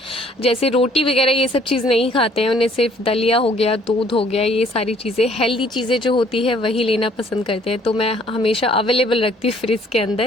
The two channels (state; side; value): normal; both; correlation 0.60